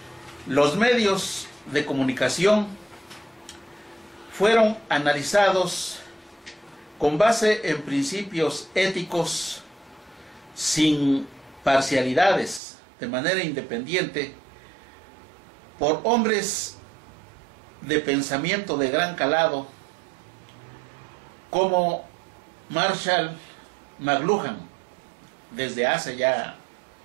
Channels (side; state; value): left; drops out; at 12.6 s